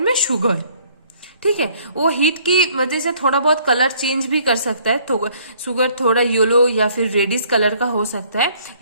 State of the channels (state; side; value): inverted; both; correlation -0.61